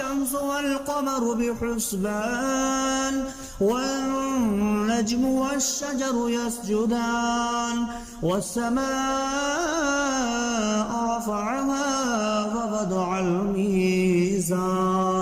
والقمر بحسبان والنجم والشجر يسجدان والسماء رفعها ووضع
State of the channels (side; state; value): both; identical; correlation 1.00